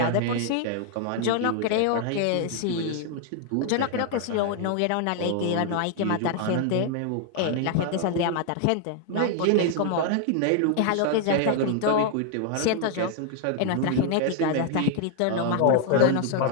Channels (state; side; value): different; both; correlation 0.00